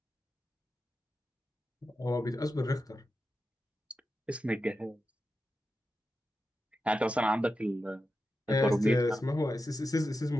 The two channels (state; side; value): normal; both; correlation 0.90